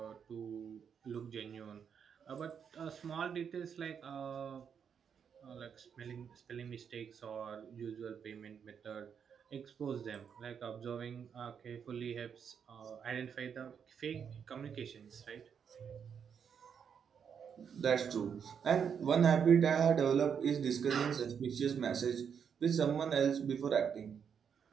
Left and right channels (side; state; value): left; quieter; 7.3 dB